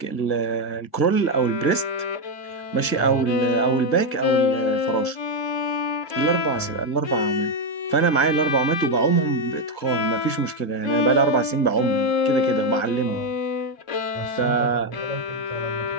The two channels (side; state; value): right; late; 1.6 ms